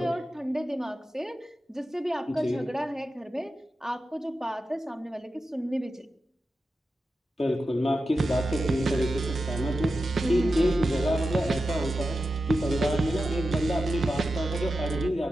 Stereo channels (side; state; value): both; normal; correlation 0.91